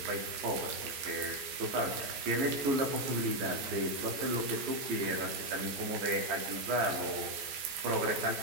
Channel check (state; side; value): late; left; 15 ms